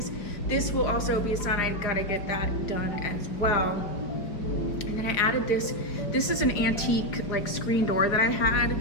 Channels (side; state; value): right; late; 4.9 ms